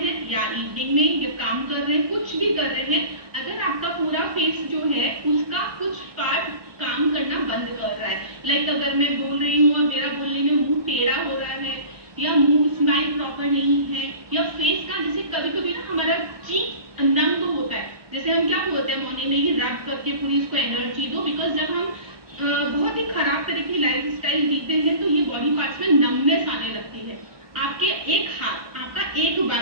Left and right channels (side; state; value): left; late; 1.2 ms